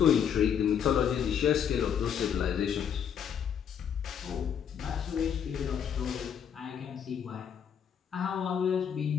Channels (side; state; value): right; quieter; 8.1 dB